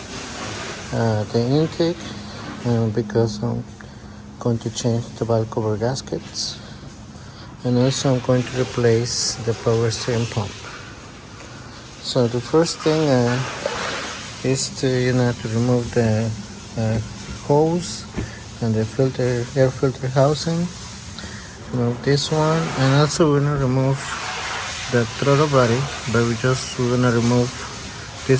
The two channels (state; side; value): identical; both; correlation 1.00